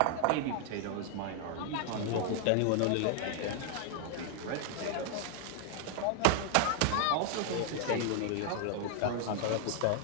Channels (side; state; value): both; different; correlation 0.00